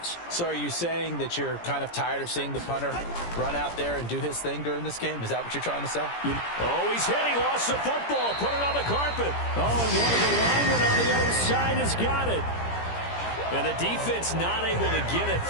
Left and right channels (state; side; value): late; right; 17 ms